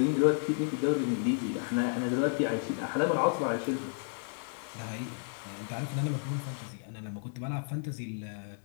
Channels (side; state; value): right; silent; digital silence